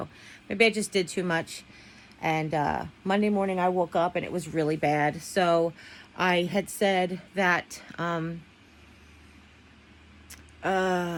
maybe I just did too much. And Monday morning I woke up and it was really bad. So I had said that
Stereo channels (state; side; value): identical; both; correlation 1.00